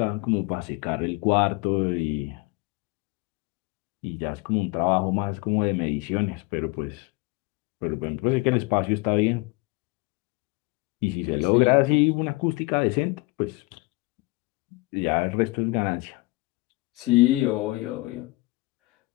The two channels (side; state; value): right; quieter; 23.2 dB